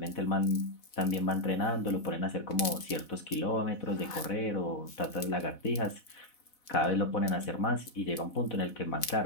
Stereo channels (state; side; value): late; right; 4.0 ms